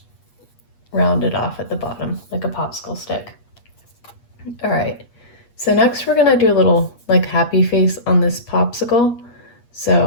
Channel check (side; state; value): right; late; 8.4 ms